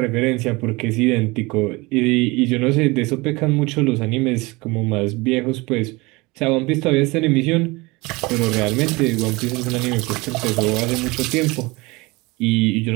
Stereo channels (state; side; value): quieter; left; 23.9 dB